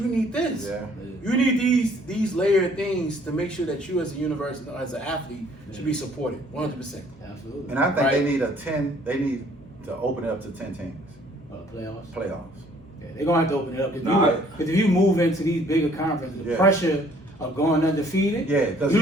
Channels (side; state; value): both; normal; correlation 0.59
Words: you need this. Yeah. You need these layered things to make sure that you as a university, as an athlete, should be supported 100%. Absolutely. And I think Right. they need to open it up to 10 teams. Playoffs. Playoffs. Yeah, they're gonna have to open it up. Nah, Because if you move into these bigger conferences, the Yeah. pressure of going undefeated, Yeah, 'cause you